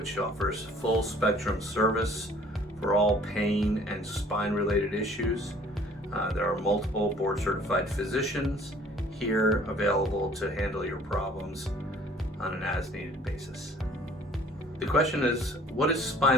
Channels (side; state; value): both; normal; correlation 0.54